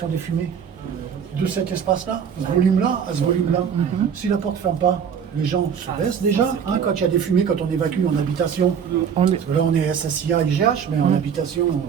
des fumées de cet espace-là, ce volume-là, à ce volume-là. Si la porte ne ferme pas, les gens se baissent déjà, hein, quand il y a des fumées, quand on évacue en habitation. Parce que là, on est SSIA, IGH, mais en habitation,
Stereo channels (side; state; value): left; quieter; 7.4 dB